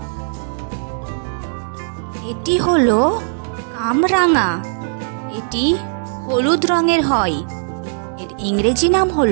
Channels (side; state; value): left; silent; digital silence